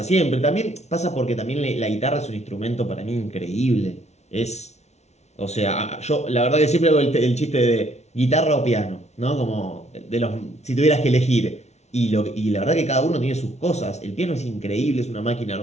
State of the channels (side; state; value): right; late; 0.32 ms